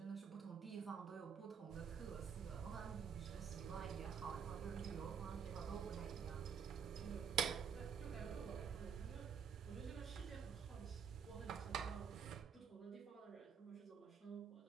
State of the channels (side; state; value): left; quieter; 7.0 dB